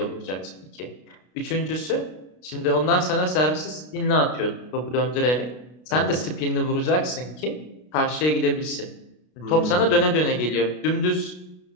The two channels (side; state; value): right; late; 32 ms